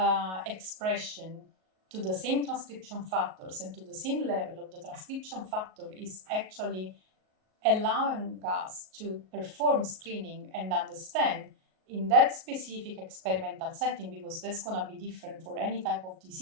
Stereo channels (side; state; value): left; late; 38 ms